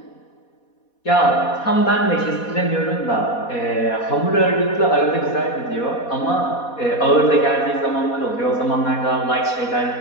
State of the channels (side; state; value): right; late; 4.2 ms